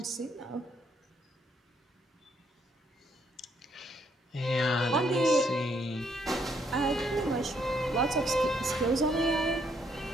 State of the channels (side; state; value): both; normal; correlation 0.71